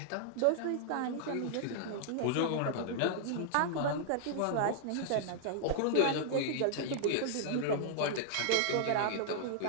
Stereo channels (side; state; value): both; different; correlation -0.01